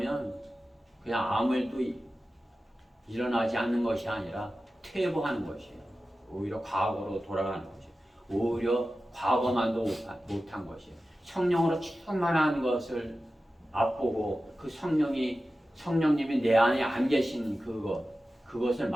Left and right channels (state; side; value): normal; both; correlation 0.94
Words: 그냥 아무 일도 일어나지 않는 것이 아니라 퇴보하는 것이에요. 오히려 과거로 돌아가는 것이에요. 오히려 과거만도 못한 것이에요. 성령으로 충만한 것을 맛보고 그 성령님이 내 안에 안 계신 그것을